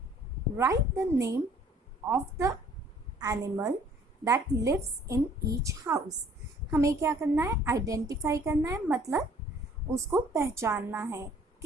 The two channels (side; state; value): both; normal; correlation 0.57